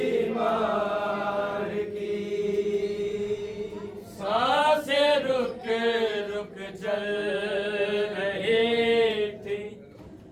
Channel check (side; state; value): both; identical; correlation 1.00